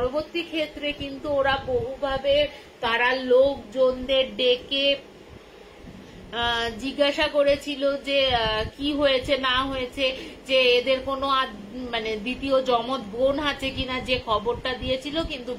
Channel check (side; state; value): both; identical; correlation 1.00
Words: ক্ষেত্রে কিন্তু ওরা বহুভাবে তারা লোকজনদের ডেকে জিজ্ঞাসা করেছিল যে কি হয়েছে না হয়েছে, যে এদের কোনো মানে দ্বিতীয় জমজ বোন আছে কিনা, যে খবরটা দিয়েছিল। কিন্তু